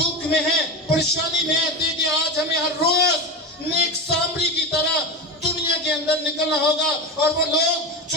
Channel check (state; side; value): normal; both; correlation 0.20